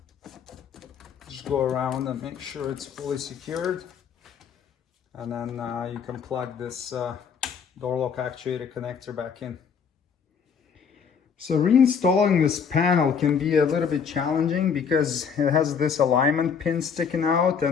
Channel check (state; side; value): quieter; right; 6.6 dB